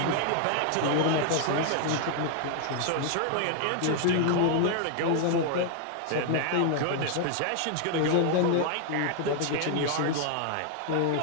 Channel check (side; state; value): both; different; correlation 0.00